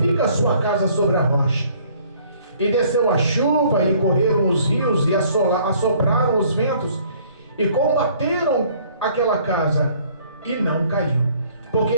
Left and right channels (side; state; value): both; inverted; correlation -0.59